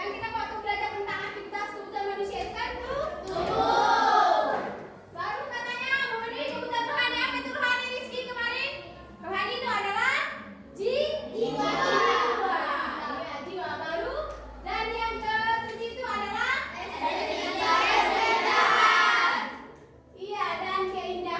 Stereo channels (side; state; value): both; identical; correlation 1.00